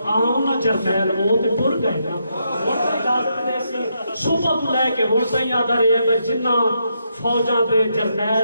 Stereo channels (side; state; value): both; inverted; correlation -0.80